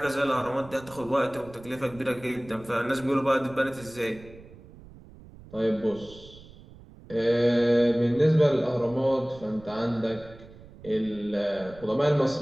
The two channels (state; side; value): noise; right; rumble, 20 dB below the sound